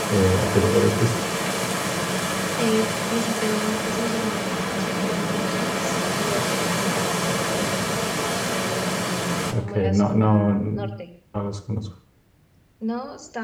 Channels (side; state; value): both; identical; correlation 1.00